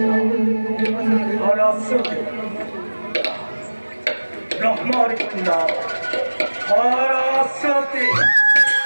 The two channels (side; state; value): both; inverted; correlation -1.00